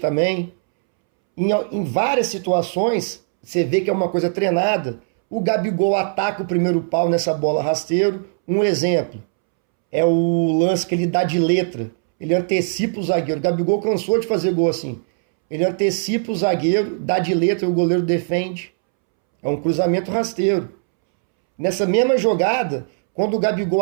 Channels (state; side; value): silent; left; 66 dB below the other